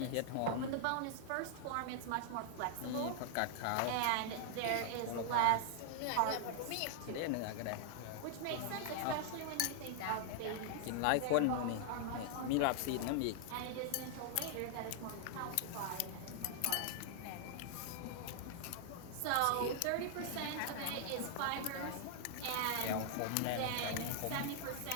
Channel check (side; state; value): both; different; correlation -0.01